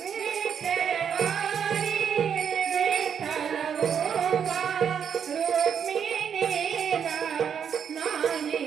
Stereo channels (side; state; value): left; quieter; 7.7 dB